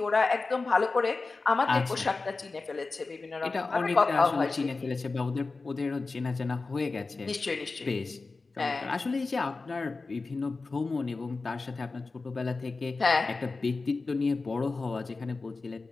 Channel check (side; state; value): right; quieter; 3.8 dB